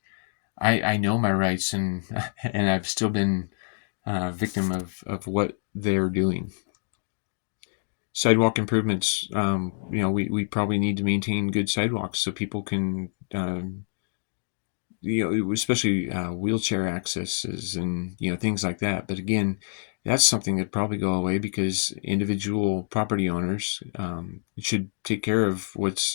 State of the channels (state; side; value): silent; right; digital silence